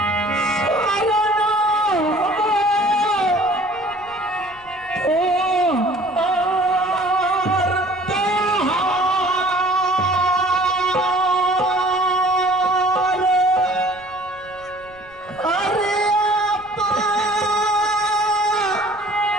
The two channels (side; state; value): right; noise; rumble, 26 dB below the sound